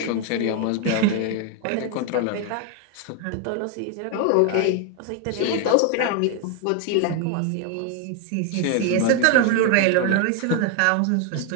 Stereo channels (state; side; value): different; both; correlation 0.01